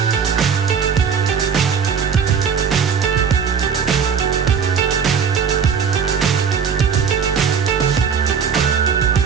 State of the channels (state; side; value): quieter; left; 6.6 dB